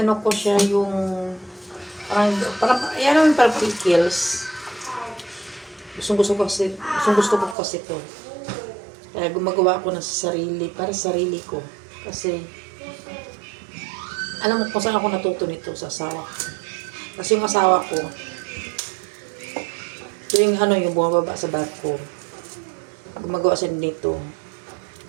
ko siya yung parang pickles. Gusto ko kasi to. Kaya gumagawa ako ng sarili para sa sarili ko. Kasi alam mo kung saan ako natuto nito sa asawa ko. Kasi yung asawa ko, yung yung bumababa sa barko, gumagawa siya nito.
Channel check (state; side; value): drops out; left; at 7.6 s